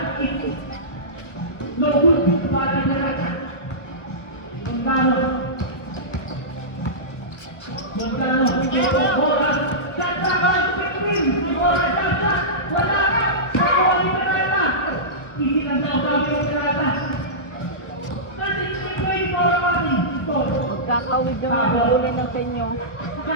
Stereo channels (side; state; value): right; late; 1.3 ms